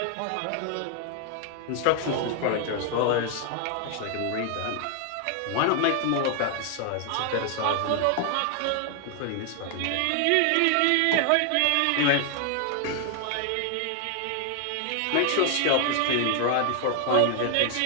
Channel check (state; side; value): different; both; correlation 0.00